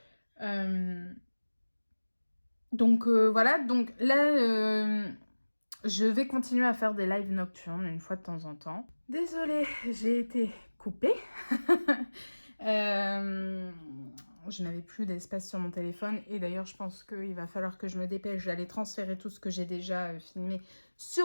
Donc voilà, donc là, je vais continuer à faire des lives nocturnes une fois de temps en temps. Désolée, j'ai été coupée. je n'avais plus d'espace sur mon téléphone. Et d'ailleurs, je pense qu'il va falloir que je me dépêche d'aller transférer tout ce que j'ai déjà filmé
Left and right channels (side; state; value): both; inverted; correlation -1.00